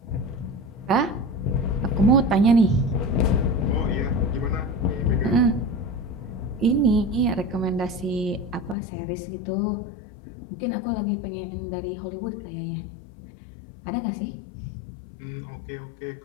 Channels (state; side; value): drops out; right; at 8.8 s